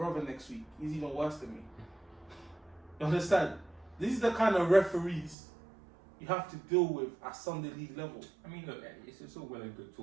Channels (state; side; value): drops out; left; at 5.4 s